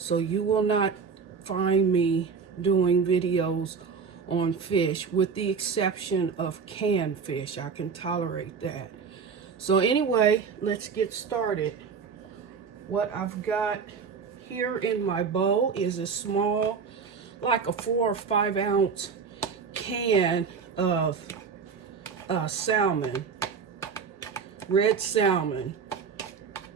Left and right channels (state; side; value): quieter; left; 5.8 dB